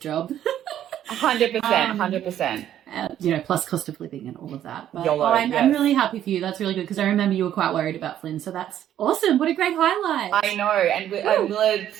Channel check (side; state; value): left; quieter; 11.1 dB